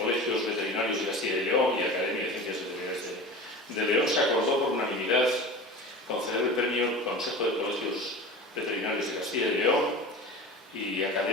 Veterinarios de Castilla y León y Academia de Ciencias Veterinarias de León, se acordó por unanimidad conceder el premio Consejo de Colegios Veterinarios de Castilla y León y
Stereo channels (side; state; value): both; normal; correlation 0.34